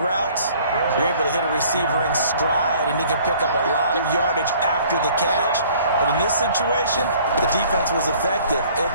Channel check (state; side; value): inverted; both; correlation -0.55